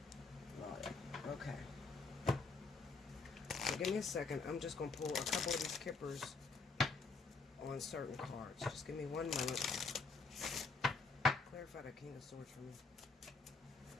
Lord. Okay. So give me a second. I'm just going to pull a couple of these kippers on certain cards. Just give me one moment. Clarify the King of Swords for me.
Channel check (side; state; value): right; quieter; 4.2 dB